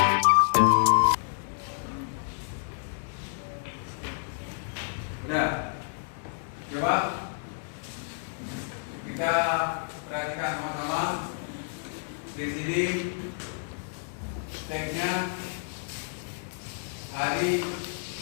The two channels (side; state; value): right; silent; digital silence